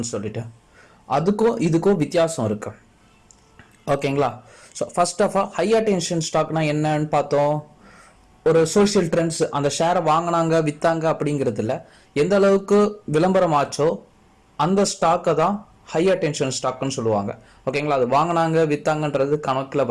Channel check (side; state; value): both; identical; correlation 1.00